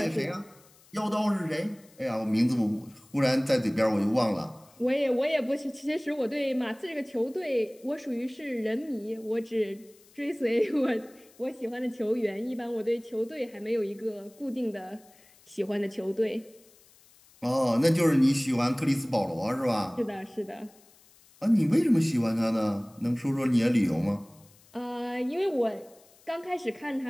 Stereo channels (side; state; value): left; noise; hiss, 28 dB below the sound